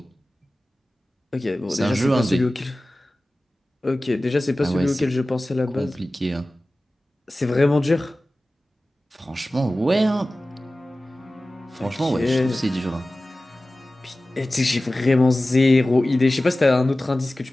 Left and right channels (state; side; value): normal; both; correlation 0.97